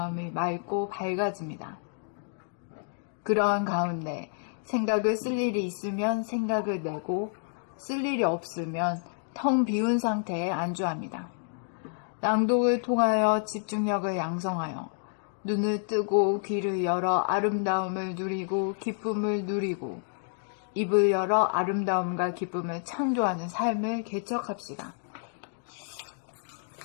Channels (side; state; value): right; silent; digital silence